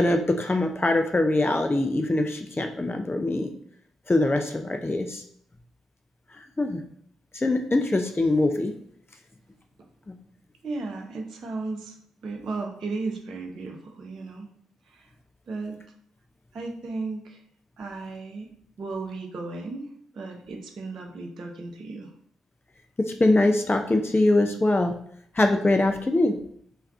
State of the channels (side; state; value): both; normal; correlation 0.92